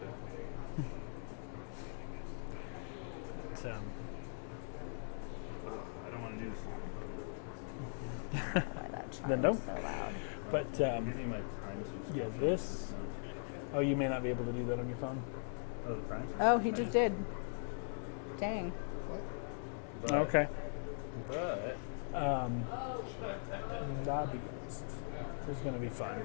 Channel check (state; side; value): silent; right; digital silence